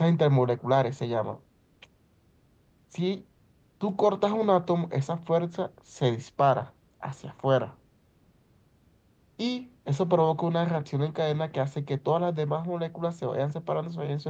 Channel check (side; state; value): both; identical; correlation 1.00